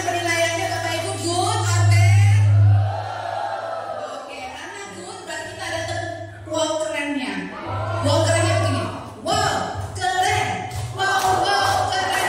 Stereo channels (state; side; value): identical; both; correlation 1.00